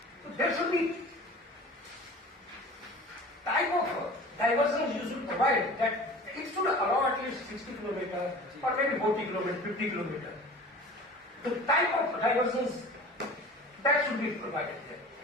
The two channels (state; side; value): normal; both; correlation 0.40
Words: So there should be type of diversions you should provide that it should allow at least 60 kilometers or maybe 40 kilometers, 50 kilometers. The type of diversions that should be provided there.